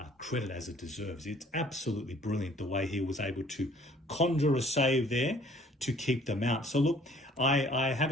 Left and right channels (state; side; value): normal; both; correlation 0.56